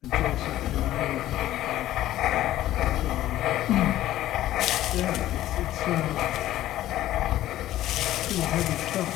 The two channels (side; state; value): right; quieter; 14.0 dB